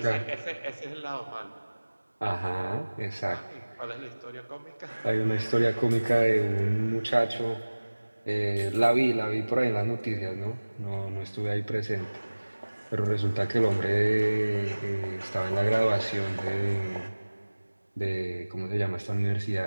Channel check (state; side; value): inverted; both; correlation -1.00